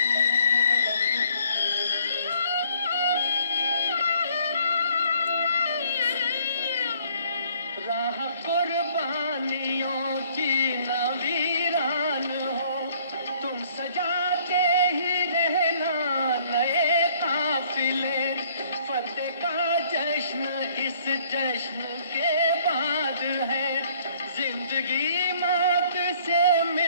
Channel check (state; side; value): inverted; both; correlation -0.61